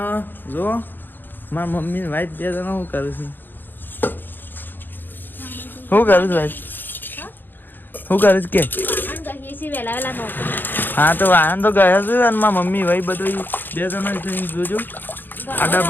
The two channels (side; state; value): right; late; 0.092 ms